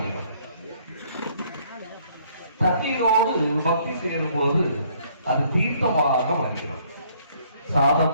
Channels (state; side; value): inverted; both; correlation -0.63